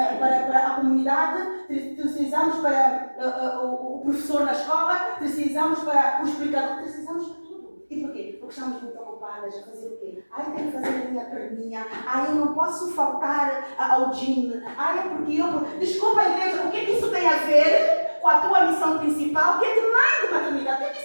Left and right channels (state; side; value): inverted; both; correlation -1.00